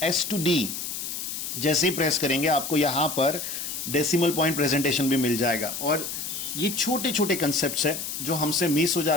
S to D जैसे ही प्रेस करेंगे आपको यहाँ पर डेसिमल पॉइंट प्रेजेंटेशन भी मिल जाएगा। और ये छोटे छोटे कंसेप्ट्स है जो हमसे मिस हो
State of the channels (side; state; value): left; noise; hiss, 5 dB below the sound